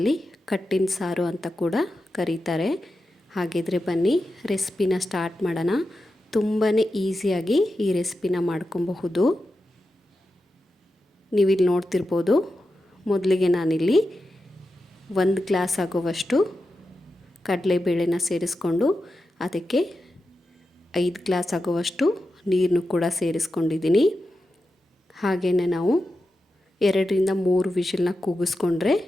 ಕಟ್ಟಿನ ಸಾರು ಅಂತ ಕೂಡ ಕರೀತಾರೆ. ಹಾಗಿದ್ರೆ ಬನ್ನಿ ರೆಸಿಪಿನ ಸ್ಟಾರ್ಟ್ ಮಾಡೋಣ. ತುಂಬಾ ಈಸಿಯಾಗಿ ಈ ರೆಸಿಪಿನ ಮಾಡ್ಕೊಬಹುದು. ನೀವಿಲ್ಲಿ ನೋಡ್ತಿರ್ಬೋದು, ಮೊದಲಿಗೆ ನಾನಿಲ್ಲಿ 1 ಗ್ಲಾಸ್ ಆಗುವಷ್ಟು ಕಡಲೆಬೇಳೆನ ಸೇರಿಸ್ಕೊಂಡು ಅದಕ್ಕೆ 5 ಗ್ಲಾಸ್ ಆಗುವಷ್ಟು ನೀರನ್ನು ಕೂಡ ಸೇರಿಸ್ಕೊಂಡಿದ್ದೀನಿ. ಹಾಗೆಯೇ ನಾವು 2-3 ವಿಷಲ್ನ ಕೂಗಿಸ್ಕೊಂಡ್ರೆ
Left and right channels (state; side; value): normal; both; correlation 0.90